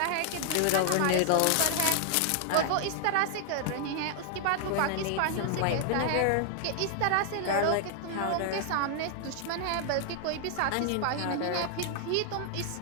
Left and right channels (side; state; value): both; different; correlation 0.00